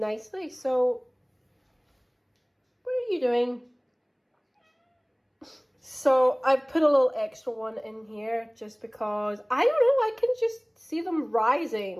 So what are you doing? So I've put a little extra one in here just because, I don't know, I can just see them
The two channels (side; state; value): both; identical; correlation 1.00